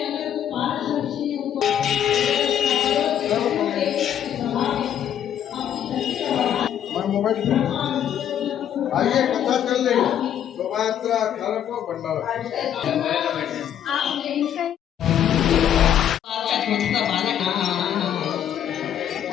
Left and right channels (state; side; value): quieter; right; 10.0 dB